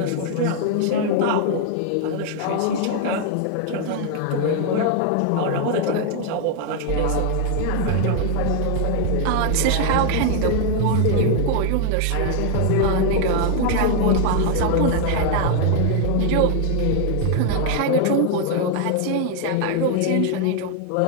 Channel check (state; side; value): different; both; correlation 0.00